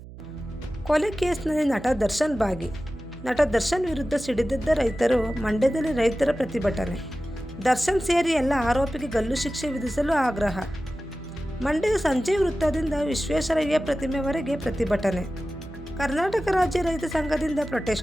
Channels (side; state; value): right; noise; hum, 16 dB below the sound